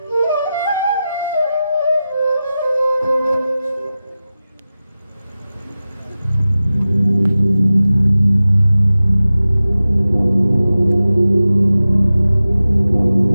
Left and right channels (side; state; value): both; inverted; correlation -0.94